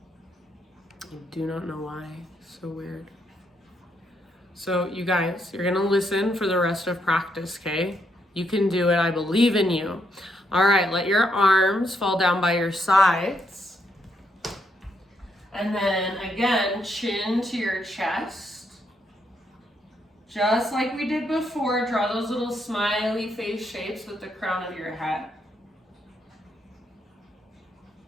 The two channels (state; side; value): normal; both; correlation 0.77